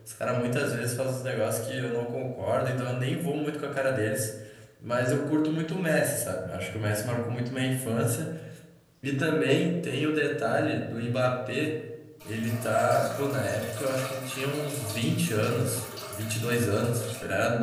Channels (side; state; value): both; identical; correlation 1.00